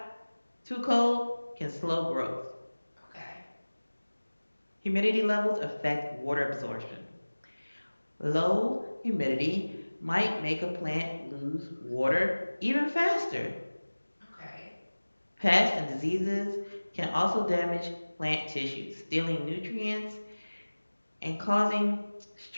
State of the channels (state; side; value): inverted; both; correlation -1.00